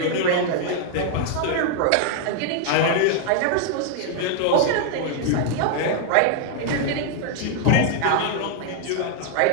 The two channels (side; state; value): both; different; correlation 0.00